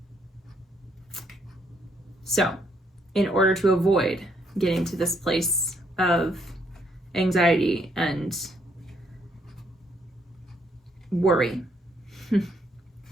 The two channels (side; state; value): both; normal; correlation 0.71